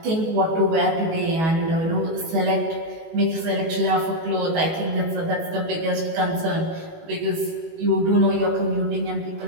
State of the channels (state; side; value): late; left; 18 ms